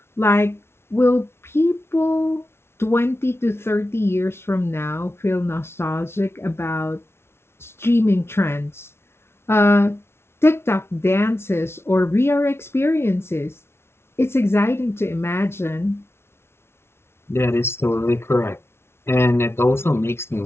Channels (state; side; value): late; right; 0.12 ms